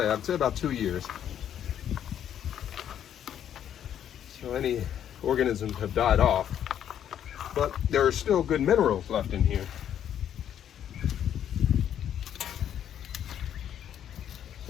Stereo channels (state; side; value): quieter; right; 9.9 dB